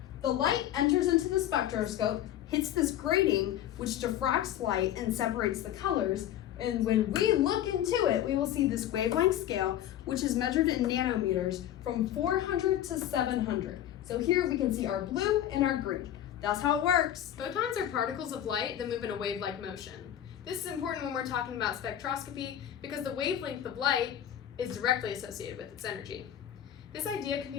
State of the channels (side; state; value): right; quieter; 11.5 dB